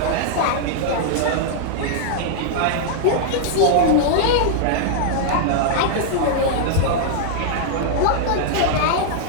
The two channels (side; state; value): both; different; correlation -0.01